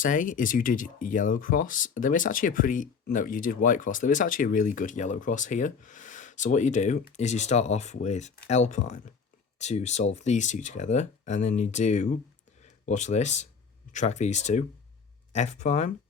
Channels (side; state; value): right; quieter; 5.8 dB